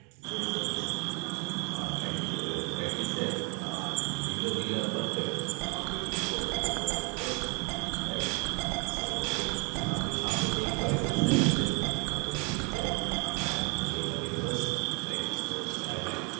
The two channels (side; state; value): left; quieter; 29.8 dB